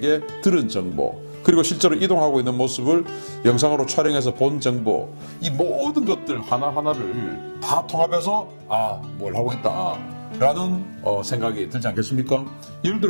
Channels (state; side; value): inverted; both; correlation -1.00